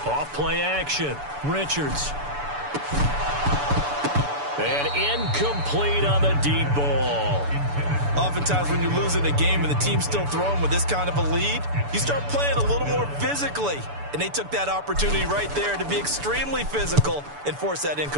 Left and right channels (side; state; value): left; late; 6.9 ms